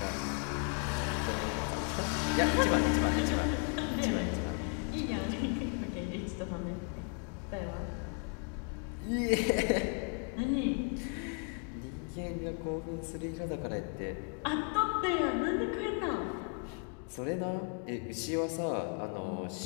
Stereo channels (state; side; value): quieter; right; 39.0 dB